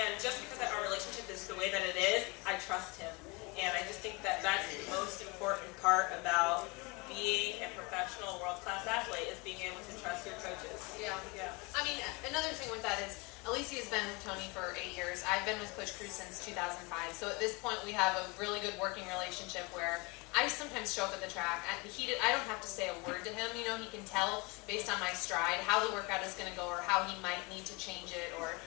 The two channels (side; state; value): right; quieter; 27.5 dB